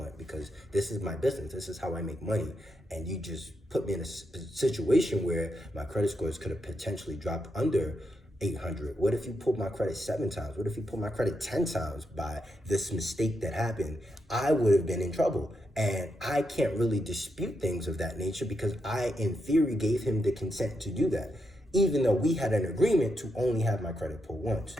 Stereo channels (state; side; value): normal; both; correlation 0.83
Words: because this is my business. This is how I make money. And you just put me in a situation where my credit scores could have potentially dropped under 800. What if you pulled my credit 7 times? What if you pulled my credit 10 times by this mistake that happened? I would have been in trouble. And I can't really dispute things of that nature because I, in theory, gave him the consent to do that, even though we had an agreement to only have my credit pulled once.